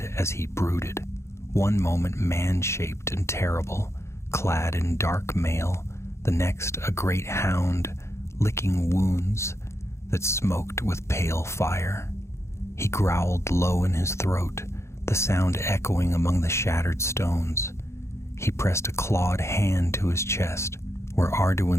as he brooded. One moment man-shaped and terrible, clad in dark mail, the next a great hound licking wounds that smoked with pale fire. He growled low in his throat, the sound echoing among the shattered stones. He pressed a clawed hand to his chest, where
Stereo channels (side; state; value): right; late; 0.13 ms